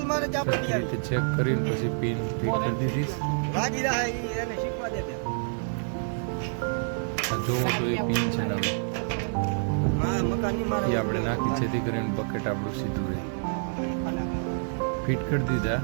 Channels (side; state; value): left; silent; 60 dB below the other